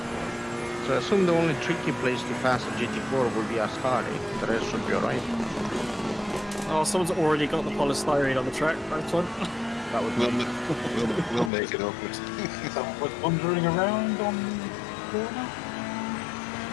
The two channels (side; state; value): right; drops out; at 11.5 s